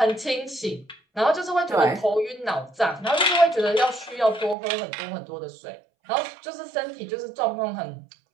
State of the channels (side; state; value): left; drops out; at 4.5 s